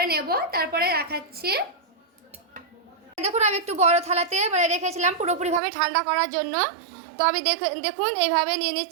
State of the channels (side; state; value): left; drops out; at 5.6 s